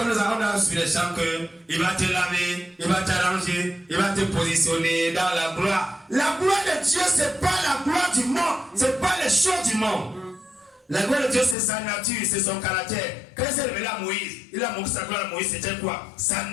avons sur les champs qu'il va te laver, il va t'arranger, il va te positionner dans la gloire. La gloire de Dieu, ce n'est pas la gloire du monde, ce n'est pas les choses du monde. La gloire de Dieu, c'est sa nature, c'est son caractère. Quand il s'est révélé à Moïse, il a montré sa gloire à Moïse, c'était quoi? Sa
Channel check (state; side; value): drops out; right; at 11.6 s